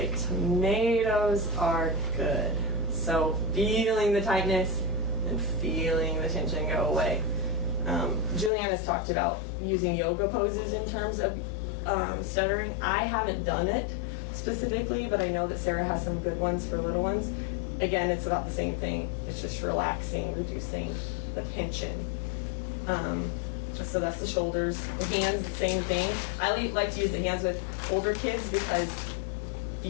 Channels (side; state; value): right; drops out; at 8.5 s